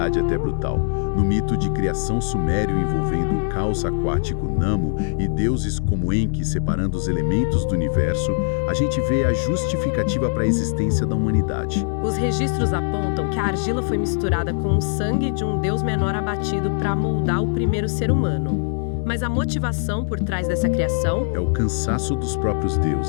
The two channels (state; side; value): silent; right; digital silence